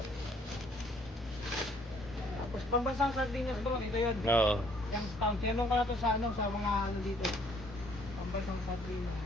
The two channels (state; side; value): normal; both; correlation 0.62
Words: Tapos pambansang sardinas bro, ito yun. Oo. Yung pound. Tinanong ka na to sa ano, sa mga ano dito. Pambansang sardinas.